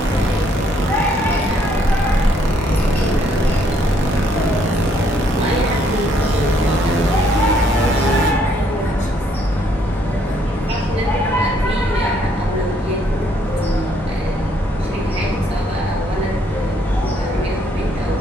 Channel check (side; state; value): both; normal; correlation 0.68